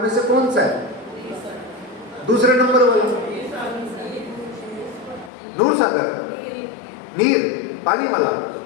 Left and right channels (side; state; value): right; drops out; at 5.3 s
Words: में से कौन सा है? दूसरे नंबर वाला दूर सागर, नीर, पानी वाला